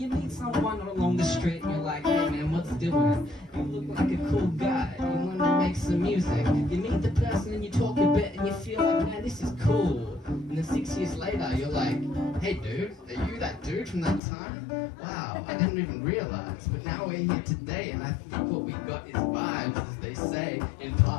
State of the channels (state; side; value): drops out; right; at 14.2 s